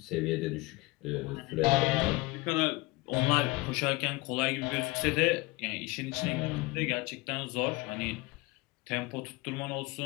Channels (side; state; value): right; quieter; 22.8 dB